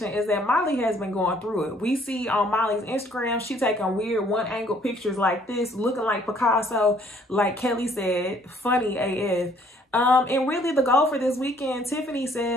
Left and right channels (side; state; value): both; normal; correlation 0.61